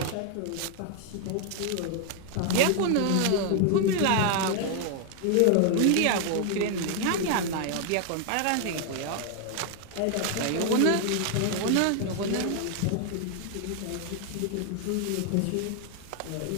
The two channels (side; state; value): both; different; correlation 0.00